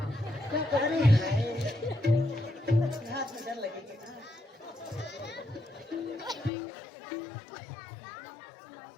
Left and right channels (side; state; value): right; drops out; at 6.5 s